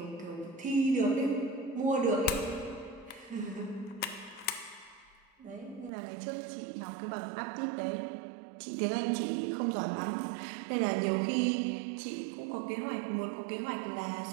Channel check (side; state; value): left; drops out; at 5.9 s